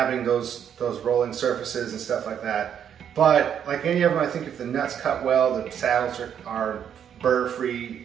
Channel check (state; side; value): quieter; left; 8.8 dB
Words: those rolling surfaces and stuff like that. But like any of them, I think if the nuts cut well, the saddles are burr-free,